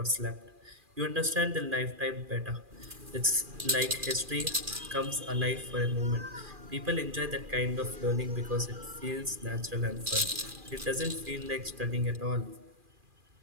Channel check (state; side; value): late; left; 2.4 ms